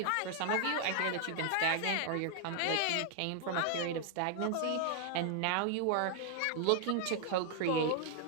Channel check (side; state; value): both; different; correlation 0.00